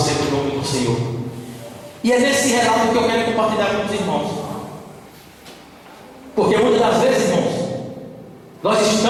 o nome do Senhor. E é nesse relato que eu quero compartilhar com os irmãos. Porque muitas das vezes, irmãos, nós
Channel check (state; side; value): identical; both; correlation 1.00